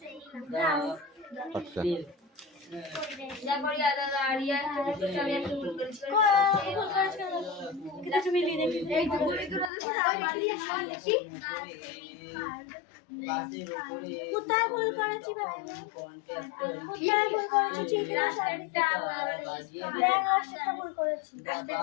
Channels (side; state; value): right; drops out; at 9.7 s